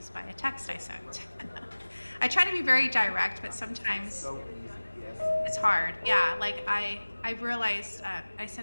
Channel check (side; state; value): both; inverted; correlation -1.00